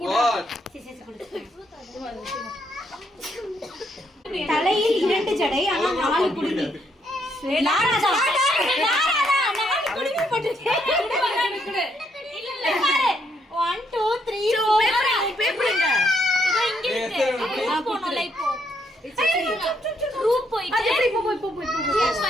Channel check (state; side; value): normal; both; correlation 0.74